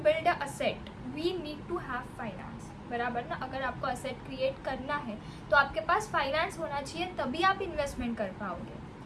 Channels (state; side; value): identical; both; correlation 1.00